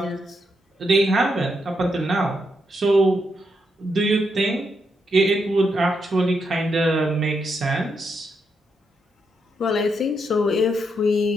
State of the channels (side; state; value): both; normal; correlation 0.81